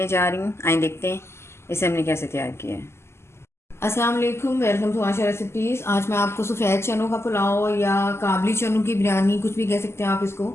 जा रही हूँ। आइए देखते हैं इसे हमने कैसे तैयार किया है। अस्सलाम वालेकुम, वेलकम टू आशा रेसिपीज़। आज मैं आपको सफ़ेद चनों का पुलाव या काबली चनों की बिरयानी, कुछ भी कह सकते हैं आप इसको,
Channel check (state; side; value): late; right; 0.12 ms